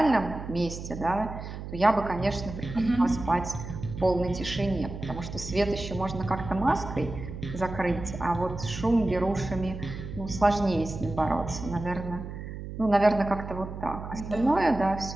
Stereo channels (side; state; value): right; noise; hum, 9 dB below the sound